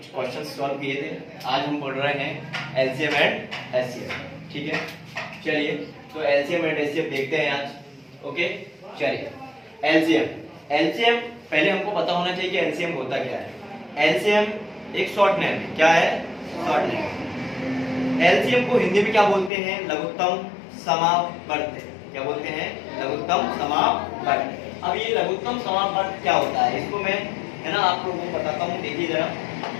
क्वेश्चन सॉल्व किए थे। आज हम पढ़ रहे हैं एलसीएम एंड एचसीएफ। ठीक है, चलिए तो एलसीएम एंड एचसीएफ देखते हैं आज। ओके, चलिए एलसीएम एलसीएम पहले हमको पता होना चाहिए कि एलसीएम होता क्या है। एलसीएम एक शॉर्ट नेम है। क्या है? Short name. एलसीएम को हिंदी में क्या बोलते हैं? लघुत्तम समावर्त। क्या बोलते हैं? लघुत्तम समावर्त। अब ये लघुत्तम समावर्त क्या होता है, इसको मैं है ना आप लोगों को बताता हूँ। देखिए जरा,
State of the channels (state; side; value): drops out; right; at 19.5 s